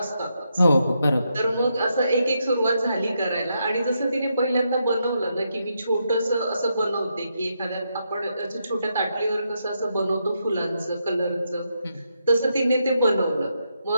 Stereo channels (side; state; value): both; inverted; correlation -0.81